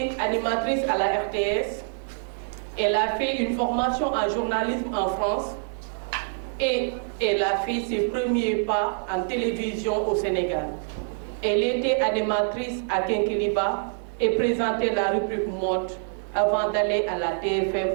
animatrice à la RTS, elle a fait une formation en journalisme en France et elle a fait ses premiers pas en télévision au Sénégal. Elle était animatrice à Kinkeliba et présentait la rubrique mode avant d'aller à la TFM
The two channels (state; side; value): silent; left; digital silence